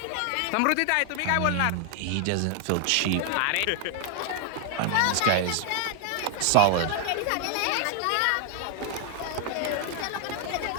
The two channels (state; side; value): different; both; correlation 0.00